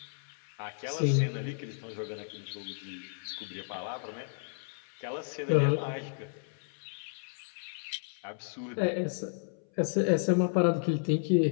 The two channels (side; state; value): right; silent; 56 dB below the other